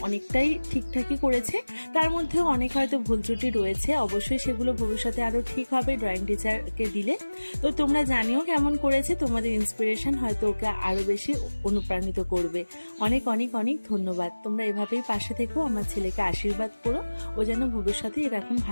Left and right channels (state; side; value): inverted; both; correlation -1.00